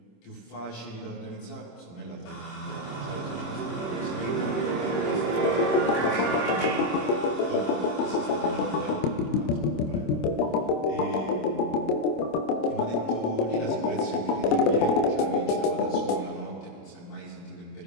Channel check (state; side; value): late; right; 26 ms